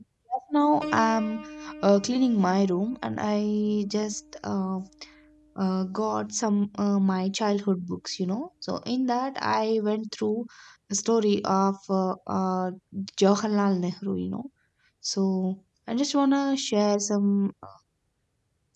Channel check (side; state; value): both; identical; correlation 1.00